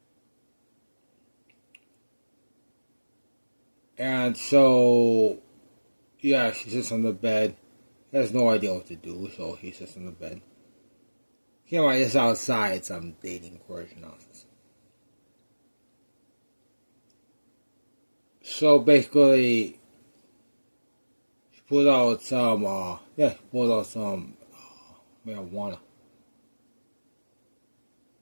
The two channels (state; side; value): inverted; both; correlation -1.00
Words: And so, yeah, she sits on the bed. Has no idea what to do, so he sits on the bed. Keep in mind, it's outside some dating course nonsense. So basically, she pulled out some, marijuana.